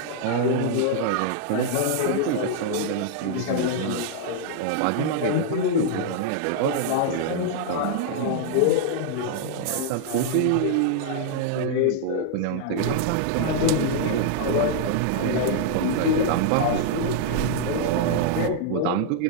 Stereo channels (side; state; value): both; different; correlation -0.01